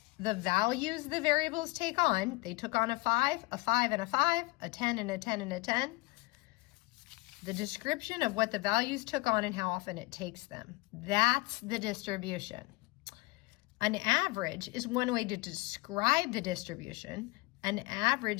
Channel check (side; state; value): right; quieter; 23.9 dB